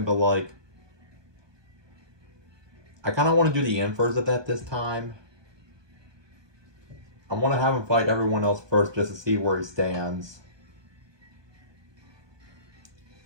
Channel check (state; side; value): late; left; 1.2 ms